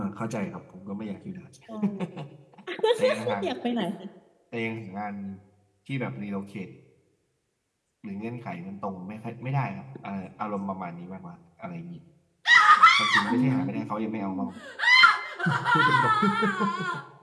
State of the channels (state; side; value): identical; both; correlation 1.00